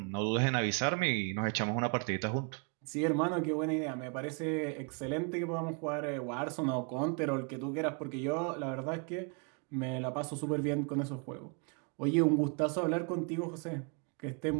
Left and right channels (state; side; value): quieter; left; 37.0 dB